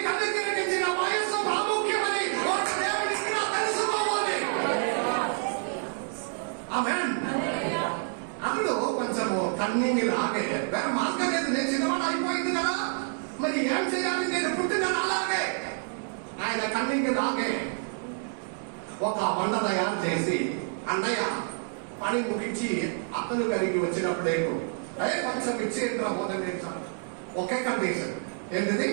అనుగ్రహించిన వయస్సు ప్రాముఖ్యమని ఒక దేవునికి తెలుసుకోవాలి. ఆమేన్. అందులో కొంచెము కన్నింగ్ లాగే వేరే మార్గం లేదు. నేను చిన్నవాడు అయిపోయింది కదా, మరి ఏం చేయాలి? నేను పుట్టిన అలాగే ఆయన కన్నింగ్ లాగే ఒక వంట తయారు చేసి, అన్నయ్య పని ముగించి అతను కలిగి వచ్చినప్పుడే కొంచెం ఇచ్చేంద్ర మొదలు నేర్చాను. ఒకే కండిషన్, ఏంటిది?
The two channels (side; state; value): left; silent; 59 dB below the other